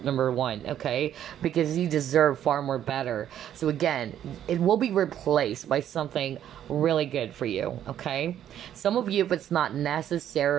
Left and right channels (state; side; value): quieter; left; 10.6 dB